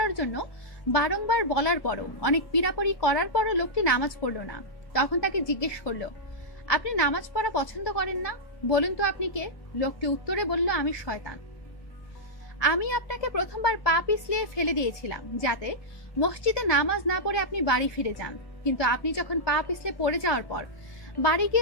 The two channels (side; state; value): right; late; 1.2 ms